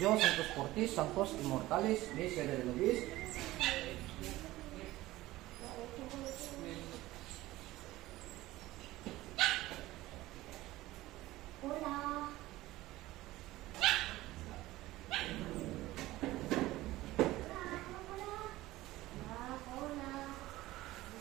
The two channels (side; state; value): left; quieter; 17.3 dB